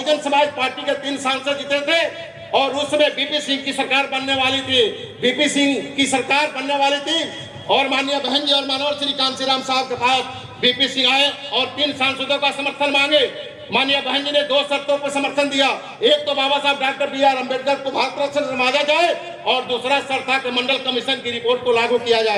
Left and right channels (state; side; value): identical; both; correlation 1.00